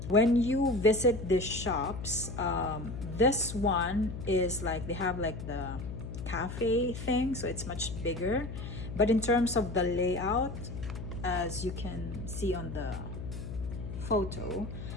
when you visit these shops, this one is like, they have like the cafe thing, so it's much bigger. But in terms of the layout, as you can see on the photo,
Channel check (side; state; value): left; noise; hum, 8 dB below the sound